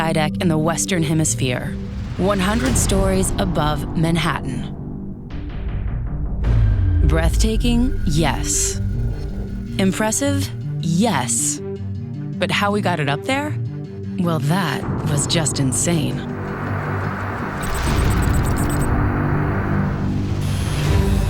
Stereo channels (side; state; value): both; identical; correlation 1.00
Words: in the Western Hemisphere, 100 stories above Manhattan. Breathtaking? Yes. Impressive? Yes. But how we got it up there? Well, that was just insane.